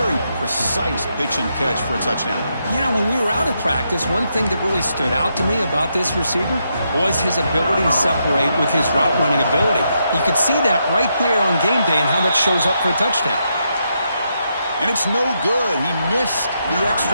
precise pitch and catch for a touchdown. Yeah, when we were out at practice, one thing that really stood out to me about this receiver was his ability to separate with his route running ability. You could see that right there on game day and how that shows up for a touchdown. And it's no good. He missed the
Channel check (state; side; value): inverted; both; correlation -0.81